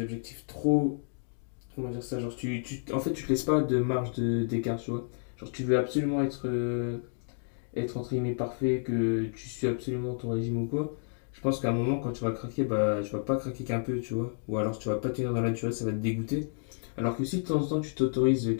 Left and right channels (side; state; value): right; silent; digital silence